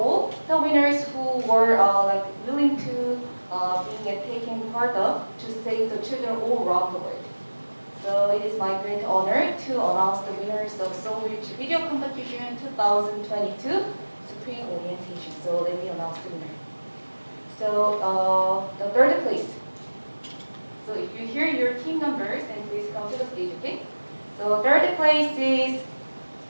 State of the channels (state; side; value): inverted; both; correlation -1.00